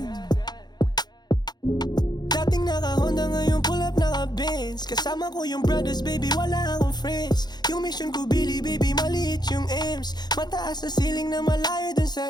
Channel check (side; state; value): right; late; 0.20 ms